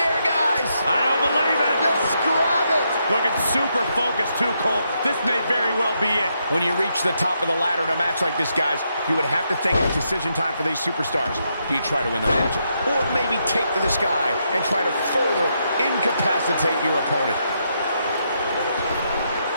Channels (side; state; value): both; inverted; correlation -0.79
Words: I don't believe it. Just grab it. Looking super focused too, Cole. This may very well be it. When you reach the top of the ladder in a match like this, guys, you would have to think it's decision time for these superstars. Do you try to win the match? Or maybe take to the sky and try to further incapacitate your opponent?